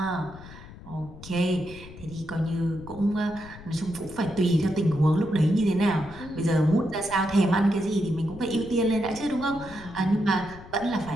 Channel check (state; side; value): noise; left; rumble, 17 dB below the sound